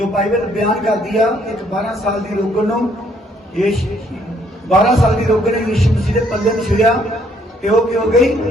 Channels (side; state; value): both; normal; correlation 0.67